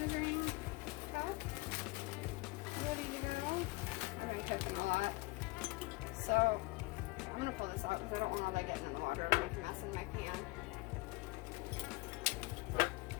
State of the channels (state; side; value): quieter; right; 23.5 dB